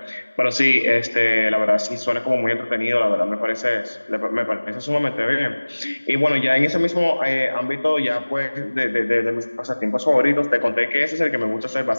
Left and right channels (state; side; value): inverted; both; correlation -1.00